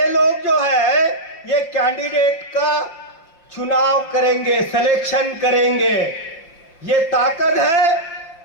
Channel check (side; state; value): right; late; 5.9 ms